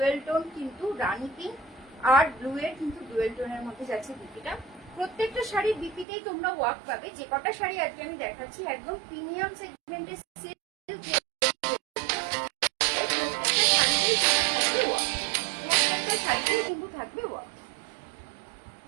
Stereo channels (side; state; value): left; drops out; at 6.1 s